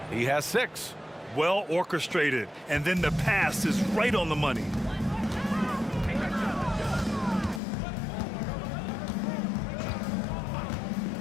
He has 6. Well orchestrated, and then the pass is right on the money.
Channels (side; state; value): right; drops out; at 7.6 s